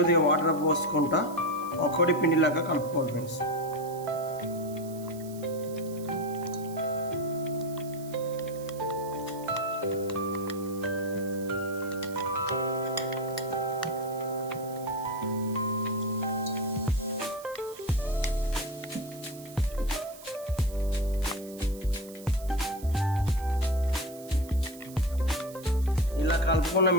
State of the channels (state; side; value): noise; right; hiss, 18 dB below the sound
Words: వాటర్ పోసుకుంటా ఒక్కటి పిండిలాగా కలుపుకోవాలి ఫ్రెండ్స్. ఇలా కలుపుకున్న